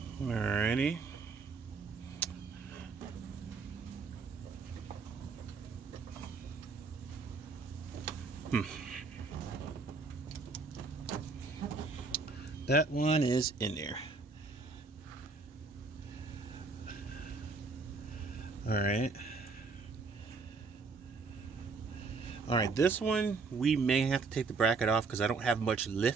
alrighty. That one is in there. All right, this one we may have to take the bracket off because I don't have much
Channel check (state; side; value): quieter; left; 4.3 dB